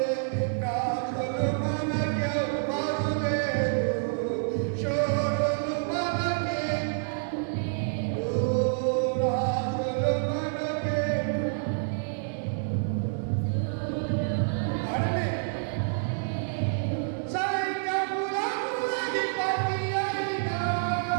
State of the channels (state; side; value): silent; left; 59 dB below the other